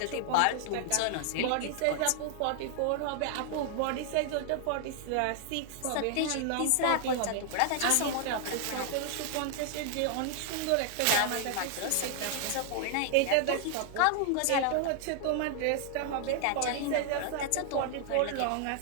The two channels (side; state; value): both; different; correlation 0.00